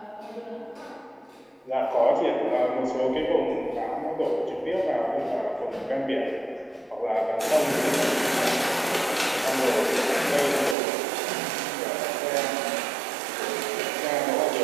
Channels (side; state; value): left; drops out; at 10.8 s